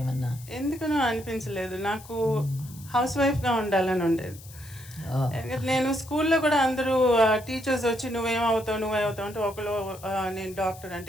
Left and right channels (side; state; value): left; noise; hiss, 19 dB below the sound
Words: ఏమన్నా? ఎందుకనో అనిపించలేదు. నాకు హౌస్ వైఫ్గా ఉండాలని ఉండేది. నేను స్కూల్లో కూడా అందరూ టీచర్స్ వచ్చి నువ్వేమవుతావు అంటే ఒకళ్ళు నేను డాక్టర్